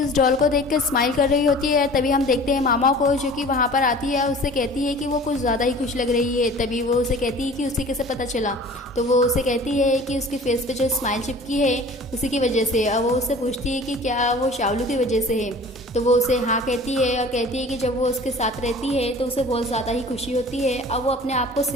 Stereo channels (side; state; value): both; normal; correlation 0.44